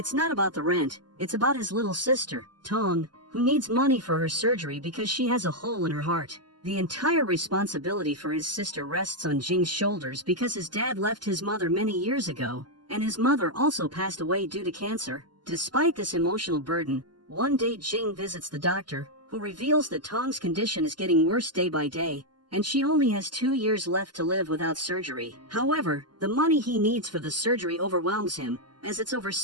not about the rent, it's about his little sister, Tong, who needs money for her surgery because she has a hole in her heart. The entire responsibility for his sister rests on Jing's shoulders because his dad left his mother many years ago, and his mother also passed away due to cancer. Despite this emotional burden, one day Jing visits the doctor, who reveals that Tong's condition is getting worse day by day, and she only has 2 years left to live without surgery. However, the money he needs for the surgery overwhelms him, as it's over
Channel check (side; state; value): left; late; 0.71 ms